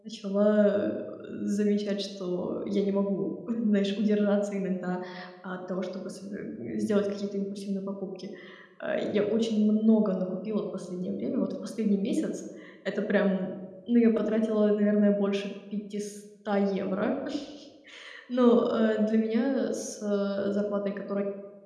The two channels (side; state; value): both; identical; correlation 1.00